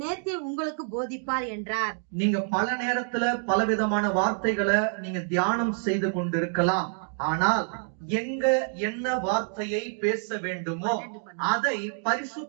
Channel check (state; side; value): silent; left; 59 dB below the other